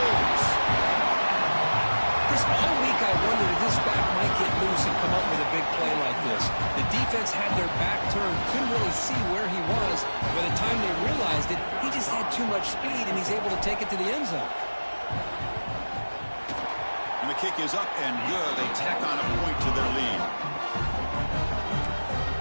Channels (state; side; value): inverted; both; correlation -1.00